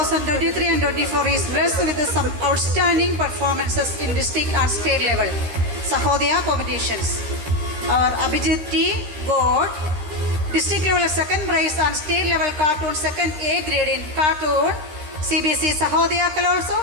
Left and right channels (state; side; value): late; left; 13 ms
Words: and 24 is blessed with some outstanding performances in district and state level Sahodaya competitions. Our Abhijit T got district level second prize and state level cartoon second A grade in cartoon CBSE Sahodaya Kalorso